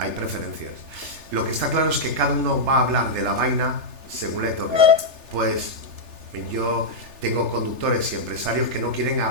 preferencias. Lo que está claro es que cada uno va a hablar de la vaina según le toque. Pues yo tengo conductores y empresarios que no quieren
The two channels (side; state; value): left; late; 3.4 ms